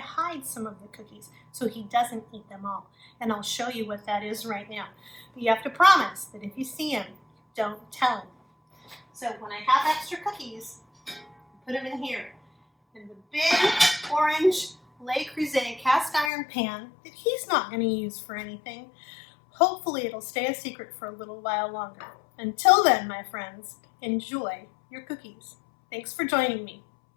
hide some of the cookies so he doesn't eat them all. And I'll show you what that is right now. But you have to promise that if you see him, don't tell him. So when I have extra cookies, put them in here. In the big orange Le Creuset cast iron pan that he's not going to use for anything. Hopefully it'll stay a secret for a little while longer. Until then, my friends, enjoy your cookies. Thanks for joining me.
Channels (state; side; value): drops out; right; at 16.3 s